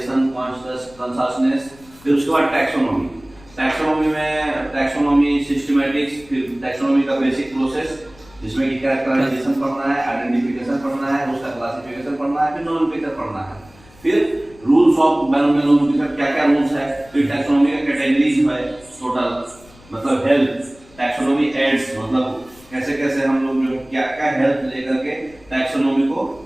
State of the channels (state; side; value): noise; left; rumble, 26 dB below the sound